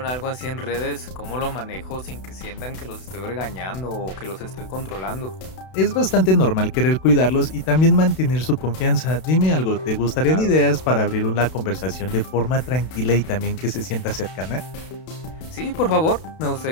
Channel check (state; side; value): late; right; 32 ms